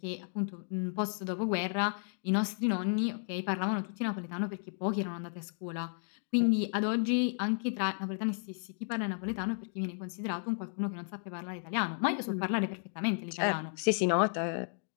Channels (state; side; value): silent; right; 56 dB below the other